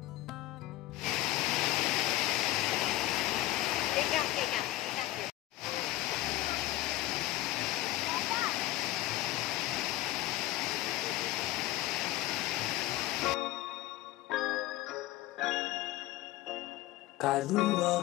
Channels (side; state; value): right; quieter; 16.6 dB